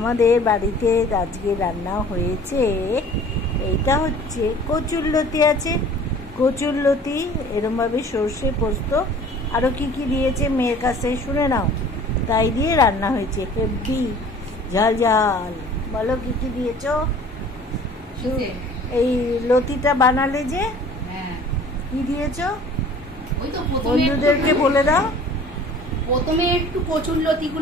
বাড়িতে। আজকে রান্না হয়েছে, এইটা হচ্ছে কচুরলতি আছে, কচুরলতি এরমভাবে সর্ষে পোস্ত আরও কি কি দিয়েছে মেয়ের কাছে শুনে নাও। তাই দিয়ে রান্না হয়েছে হেভি ঝাল ঝাল। বলো কি কি দিয়েছ? এই লতিটা বানালে যে কি দিয়েছ বন্ধুদেরকে বলে দাও। প্রথমে একটু কচুরলতি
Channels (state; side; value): normal; both; correlation 0.48